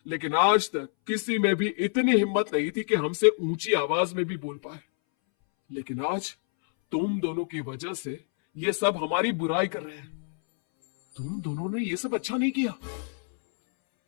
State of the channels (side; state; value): right; silent; 60 dB below the other